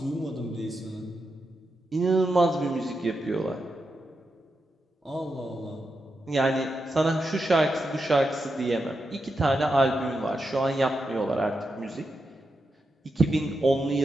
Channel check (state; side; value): normal; both; correlation 0.87